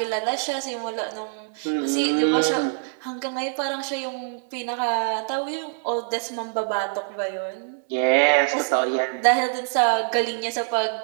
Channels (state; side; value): silent; left; 62 dB below the other